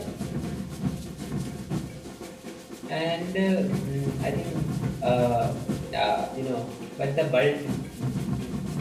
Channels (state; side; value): identical; both; correlation 1.00